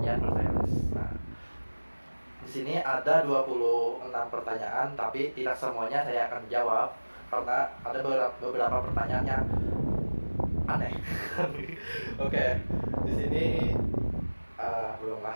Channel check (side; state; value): both; inverted; correlation -1.00